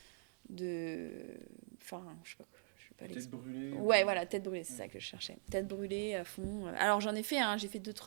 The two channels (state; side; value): silent; left; digital silence